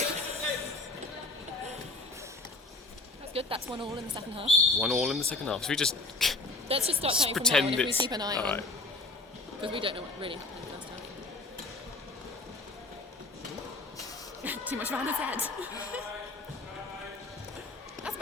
That's good, that's 1-1 in the second half. 1-1 in the second half. So we just Let's just start counting from now pretend on if we it's... keep an eye on. Alright. Because we don't know what really happened last time. Too much around his head. That's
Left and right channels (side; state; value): right; quieter; 3.2 dB